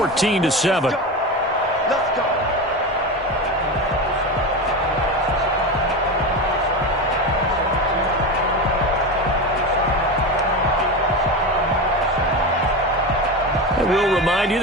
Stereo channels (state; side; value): normal; both; correlation 0.21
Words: And we'll remind you